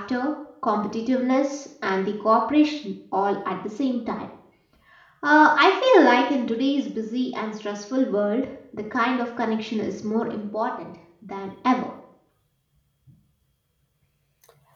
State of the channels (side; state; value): both; identical; correlation 1.00